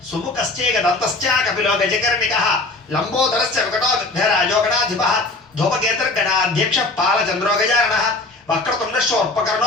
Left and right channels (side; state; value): right; quieter; 3.1 dB